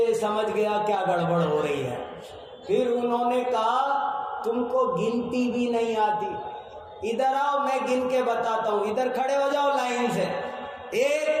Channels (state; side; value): identical; both; correlation 1.00